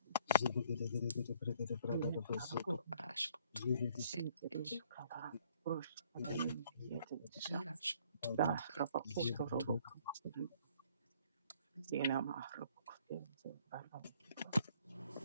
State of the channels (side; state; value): both; inverted; correlation -0.61